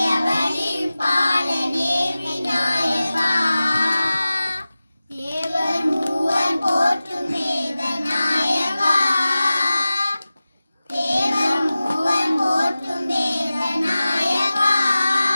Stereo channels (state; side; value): inverted; both; correlation -0.97